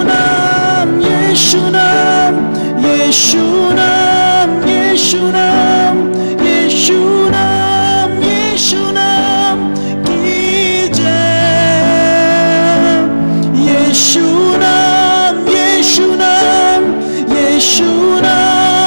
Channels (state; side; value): inverted; both; correlation -1.00